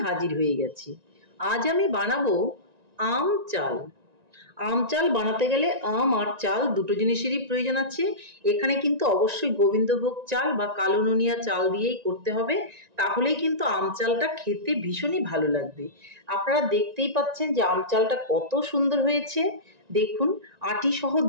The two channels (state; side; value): late; left; 1.9 ms